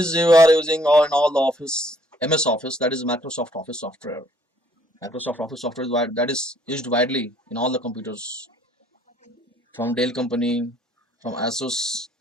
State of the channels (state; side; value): normal; both; correlation 0.63